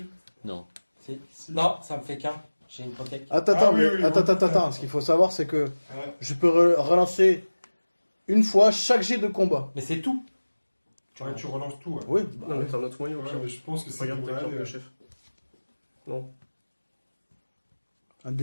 Non. Si. Non, ça me fait qu'un. J'ai une protect. Attends, Ah oui, mais oui, attends. Ce qu'il faut savoir, c'est que Ouais. je peux relancer une fois chaque jet de combat. Mais c'est tout. Ouais, tu relances tout. Ouais. Oui. Non, mais t'as un autre moyen au Ouais, pire. mais je pense que c'est Regarde pour ta carte aller, de chef. Non. Un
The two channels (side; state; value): both; inverted; correlation -1.00